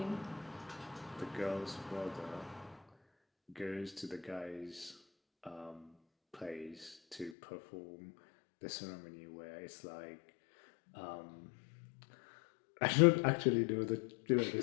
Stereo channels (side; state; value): right; drops out; at 7.4 s